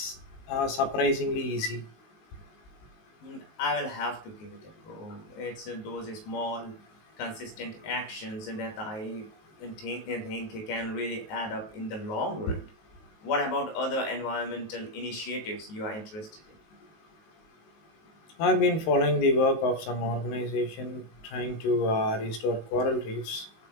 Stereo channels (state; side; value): late; right; 19 ms